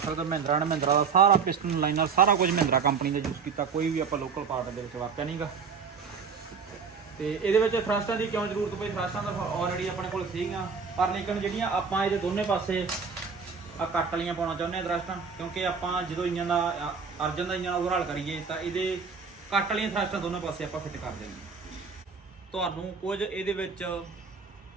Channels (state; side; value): quieter; left; 5.6 dB